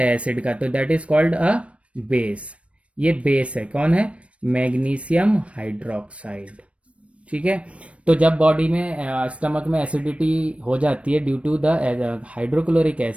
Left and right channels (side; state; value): left; late; 0.062 ms